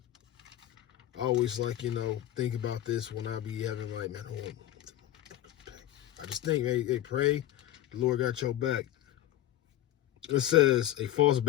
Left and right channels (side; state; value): right; quieter; 13.2 dB